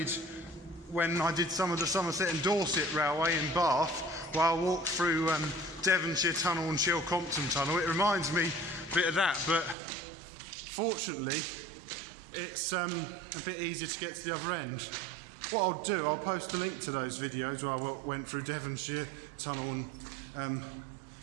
when I did some of the Somerset and Dorset Railway in Bath, while I walked through Devonshire Tunnel and Chilcompton Tunnel. It reminds me a bit of that, but fortunately it's a bit easier to get to the other end. What I'll do, I'll post a link to those videos where I went through Devonshire Tunnel and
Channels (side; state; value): left; drops out; at 9.8 s